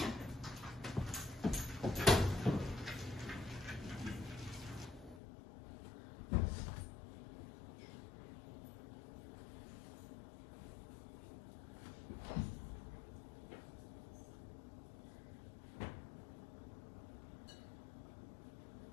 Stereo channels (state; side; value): drops out; right; at 5.2 s